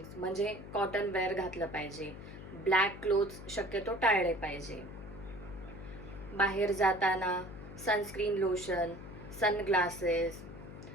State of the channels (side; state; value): left; noise; hum, 13 dB below the sound